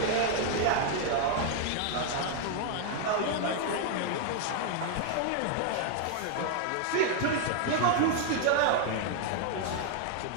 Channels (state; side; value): different; both; correlation 0.00